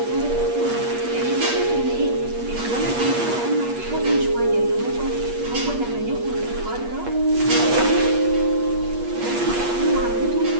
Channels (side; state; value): left; late; 8.4 ms